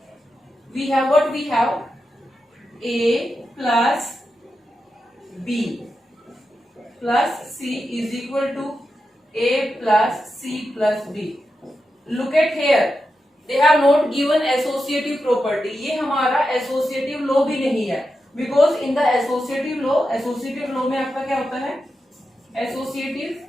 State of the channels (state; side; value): normal; both; correlation 0.89